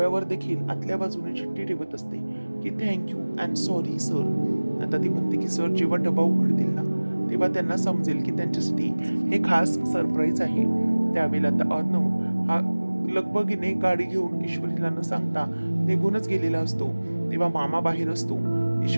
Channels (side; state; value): both; inverted; correlation -1.00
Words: देखील आतल्या बाजूने चिठ्ठी ठेवत असते की थँक्यू अँड सॉरी सर. आता ती म्हणते की सर जेव्हा डबा उघडतील ना तेव्हा त्यांना समजेल की त्यांच्यासाठी हे खास सरप्राईज आहे. त्यावेळेला आता अर्णव हा लगबगीने गाडी घेऊन ईश्वरीला न सांगता निघूनच गेलेला असतो. तेव्हा मामा बाहेर असतो.